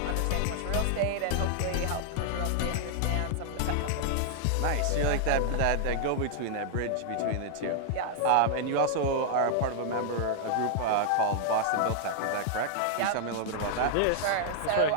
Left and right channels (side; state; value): both; different; correlation -0.01